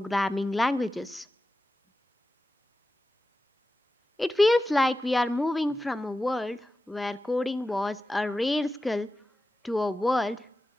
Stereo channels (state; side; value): normal; both; correlation 0.94